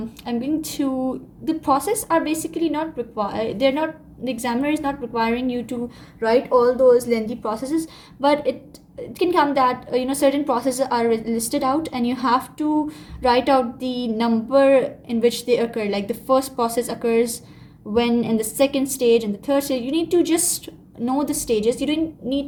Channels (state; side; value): identical; both; correlation 1.00